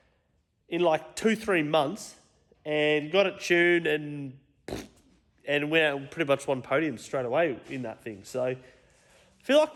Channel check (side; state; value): both; identical; correlation 1.00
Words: in like 2-3 months and got it tuned and went out and pretty much won podiums straight away in that thing. So I feel like